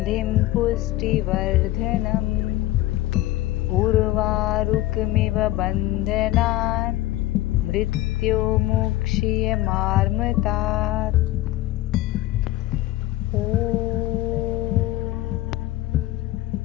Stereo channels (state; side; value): quieter; right; 16.2 dB